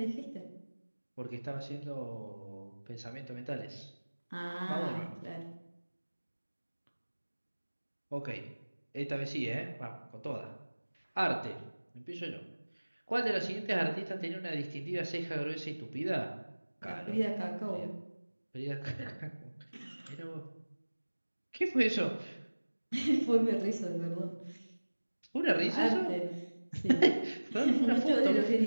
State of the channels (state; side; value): inverted; both; correlation -1.00